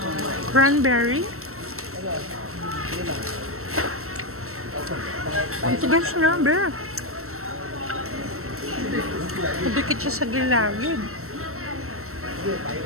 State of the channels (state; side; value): late; left; 0.63 ms